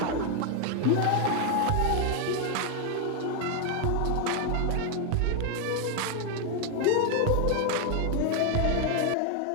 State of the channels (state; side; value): different; both; correlation 0.01